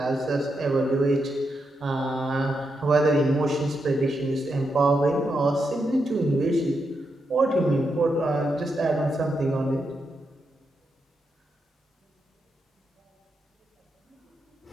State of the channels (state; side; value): normal; both; correlation 0.83